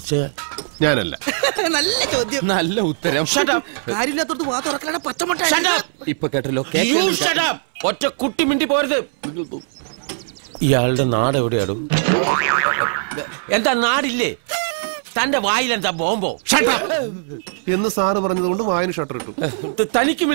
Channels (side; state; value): left; silent; 63 dB below the other